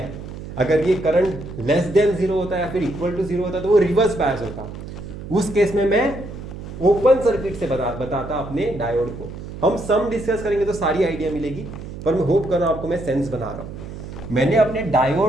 है। अगर ये करंट लेस देन जीरो होता है या फिर इक्वल टू जीरो होता तो वो रिवर्स बायस होता। उस केस में मैं ओपन सर्किट से बताता अपने डायोड को। हम सम डिस्कस करेंगे तो सारी आइडिया मिलेगी, पर मैं होप कर रहा हूं आपको मैं सेंस बना रहा हूं। मैंने अपने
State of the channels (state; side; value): noise; right; hum, 11 dB below the sound